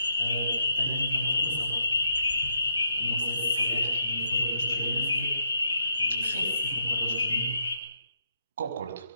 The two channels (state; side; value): inverted; both; correlation -0.77